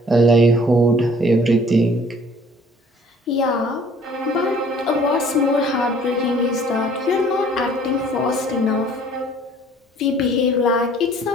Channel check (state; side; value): normal; both; correlation 0.55